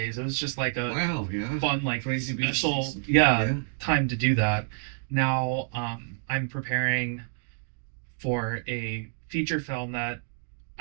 it was just like a Wow, yeah. fun, like Crazy busy special, season. yeah, Yeah. time to do that. Now I'm preparing for a feature film that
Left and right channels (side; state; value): left; silent; 59 dB below the other